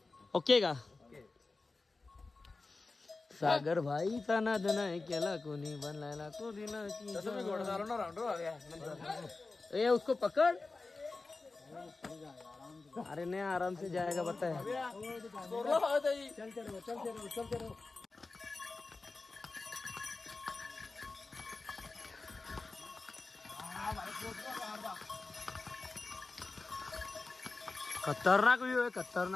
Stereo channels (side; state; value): right; quieter; 3.7 dB